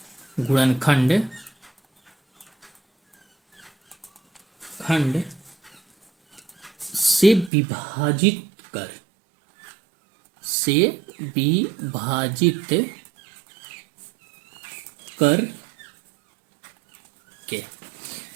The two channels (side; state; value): left; drops out; at 7.5 s